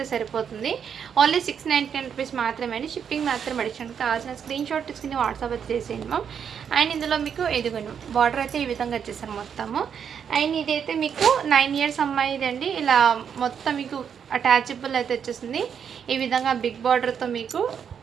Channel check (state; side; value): quieter; left; 7.6 dB